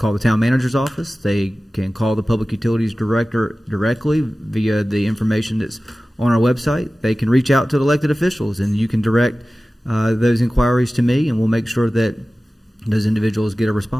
the town manager's office. They can call the public utilities director directly via the information that's on our website. They can reach out to the elected officials, and you can direct those inquiries to me, and we'll make sure that those individuals get a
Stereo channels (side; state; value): both; normal; correlation 0.96